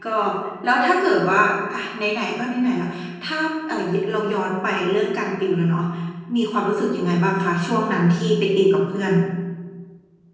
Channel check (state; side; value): identical; both; correlation 1.00